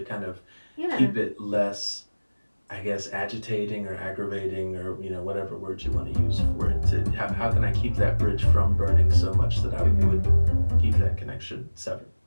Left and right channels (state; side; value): inverted; both; correlation -1.00